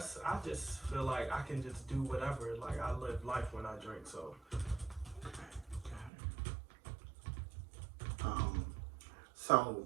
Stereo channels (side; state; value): left; drops out; at 6.1 s